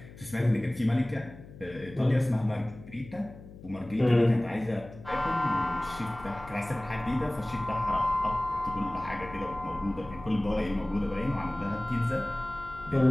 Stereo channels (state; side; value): noise; left; hum, 17 dB below the sound